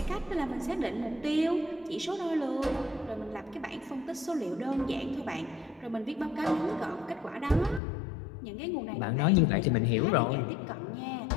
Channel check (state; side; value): drops out; right; at 7.8 s